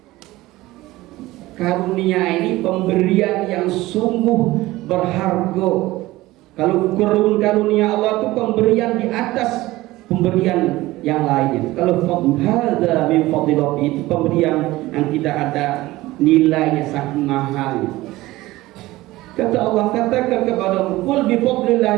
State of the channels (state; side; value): quieter; left; 18.2 dB